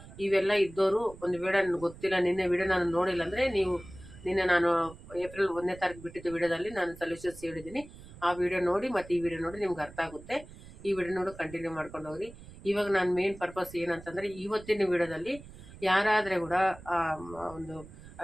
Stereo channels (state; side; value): noise; right; rumble, 18 dB below the sound